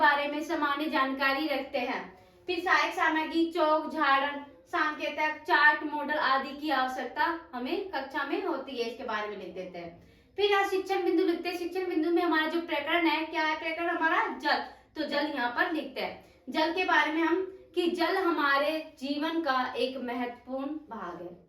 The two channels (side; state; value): both; identical; correlation 1.00